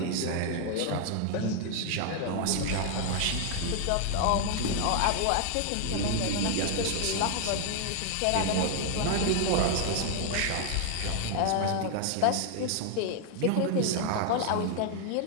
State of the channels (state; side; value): different; both; correlation 0.00